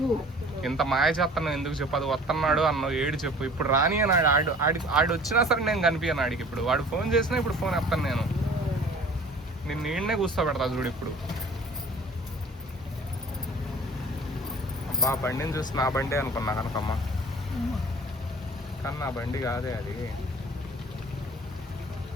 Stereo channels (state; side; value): normal; both; correlation 0.47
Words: ఇంత మాయ చేస్తాను ఎందుకు చెప్పు? అది వస్తున్నాడు అన్నావు, ఏడు చెప్పు. ఇప్పుడు రాని అన్నాడు. ఆడు వచ్చినా సరే నేను కనిపించాను ఆడికి. ఇప్పుడు వాడు ఫోన్ చేసినా ఇప్పుడు ఫోన్ ఎత్తాను నేను. నిన్ను నీడనే కూర్చోబెడతా చూడు ఇప్పుడు. అబ్బా బండిని చూసి నా బండి అనుకున్నా కనకమ్మ, కానీ నా బండి కాదే అది.